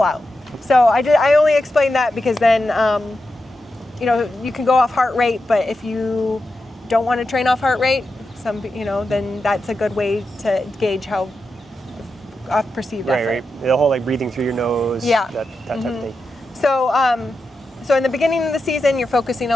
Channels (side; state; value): both; normal; correlation 0.89